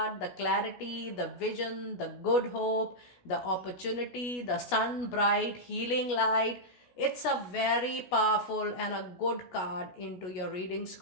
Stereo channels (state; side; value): late; right; 16 ms